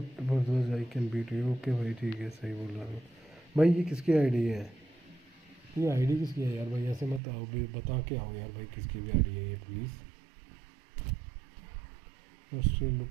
I can beat you. Okay भाई ठीक है सही बोल रहा हूँ भाई। ये किसकी आईडी है? ये आईडी किसकी है यार भाई? ऐसे मत आओ भाई, बता के आओ यार भाई किसकी भी आईडी है ये please. Still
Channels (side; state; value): left; drops out; at 7.2 s